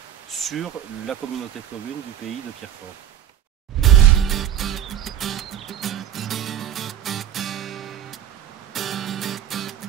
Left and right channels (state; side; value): quieter; left; 10.3 dB